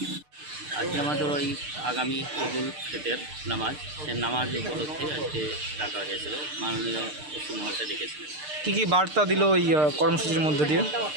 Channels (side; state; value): left; late; 6.6 ms